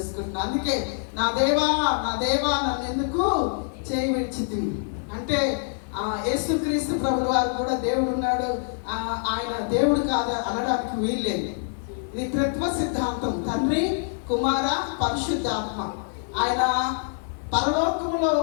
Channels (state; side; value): silent; right; digital silence